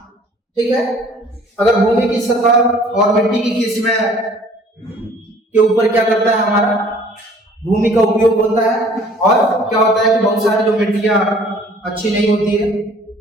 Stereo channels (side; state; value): both; normal; correlation 0.54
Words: ठीक है, अगर भूमि की सतह और मिट्टी की किस्में के ऊपर क्या करता है, हमारा भूमि का उपयोग होता है। और क्या होता है कि बहुत सारी जो मिट्टियां अच्छी नहीं होती है